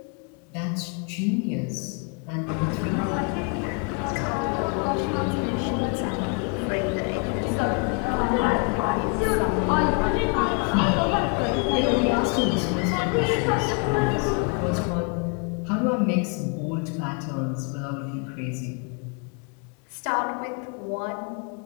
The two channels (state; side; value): quieter; right; 34.4 dB